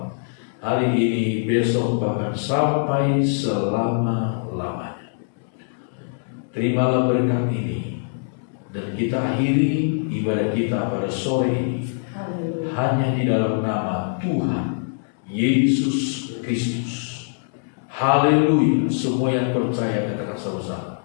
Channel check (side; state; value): right; silent; 63 dB below the other